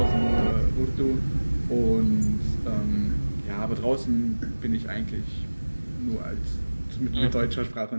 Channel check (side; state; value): both; inverted; correlation -1.00